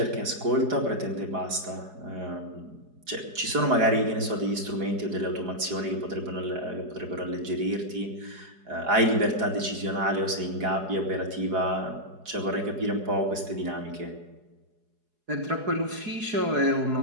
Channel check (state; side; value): late; left; 4.8 ms